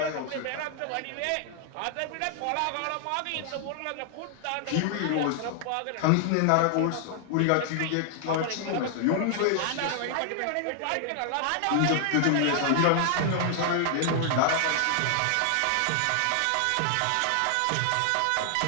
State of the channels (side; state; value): both; different; correlation 0.00